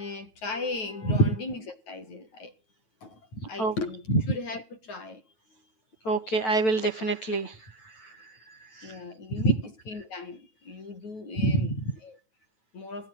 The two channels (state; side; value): late; right; 9.1 ms